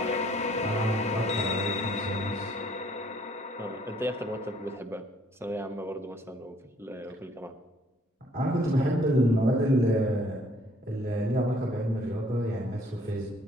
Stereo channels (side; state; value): both; normal; correlation 0.62